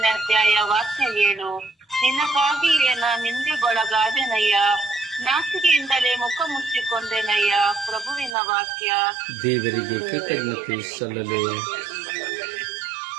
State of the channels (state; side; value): drops out; left; at 8.3 s